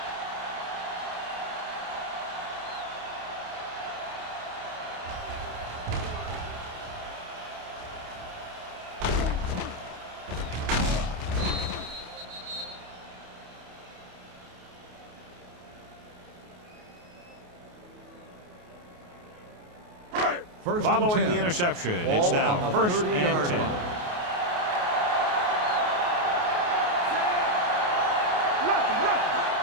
Following the interception, it's now first and 10.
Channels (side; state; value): left; late; 28 ms